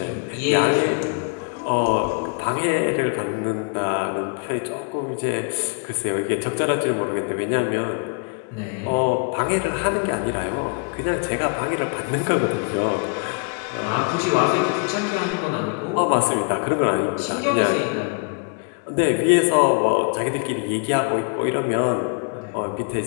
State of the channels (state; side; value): quieter; right; 37.3 dB